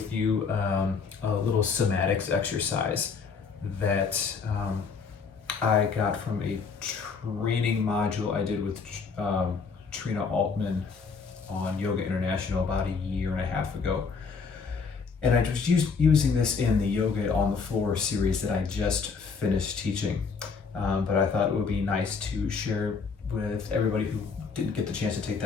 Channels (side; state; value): right; quieter; 5.3 dB